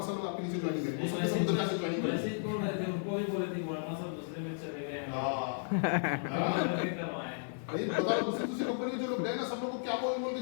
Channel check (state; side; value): silent; right; digital silence